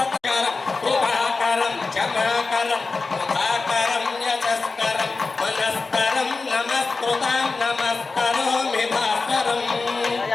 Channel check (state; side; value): quieter; right; 4.0 dB